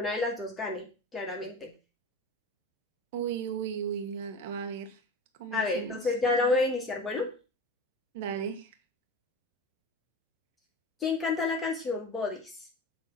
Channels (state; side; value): normal; both; correlation 0.32